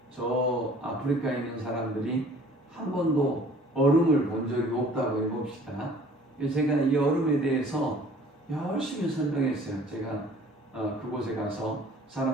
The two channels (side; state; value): both; normal; correlation 0.52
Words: 사람들이 한 번도 얼음을 본 적이 없다고 해봅시다. 제가 이 얼음에 대해서 열심히 설명했어요. 제가 그곳에 가서